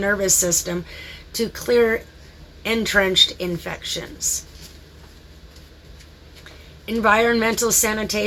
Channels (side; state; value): both; identical; correlation 1.00